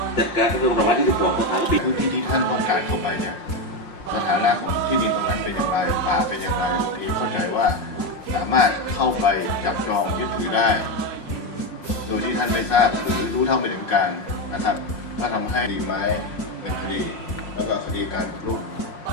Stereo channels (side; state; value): right; late; 5.6 ms